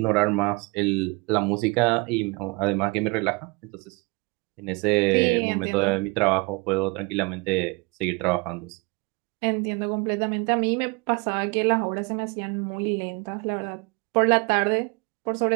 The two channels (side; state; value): left; quieter; 28.5 dB